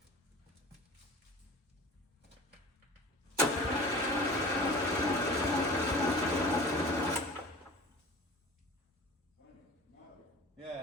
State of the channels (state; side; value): normal; both; correlation 0.40